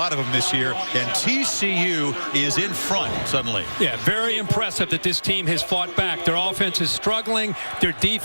of them this year, and TCU is in front suddenly. Yeah, very impressive that this team has fought back. Their offense is struggling. Their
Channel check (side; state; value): both; inverted; correlation -1.00